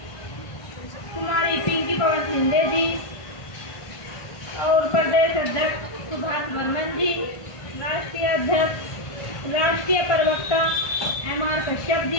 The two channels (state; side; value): late; right; 1.5 ms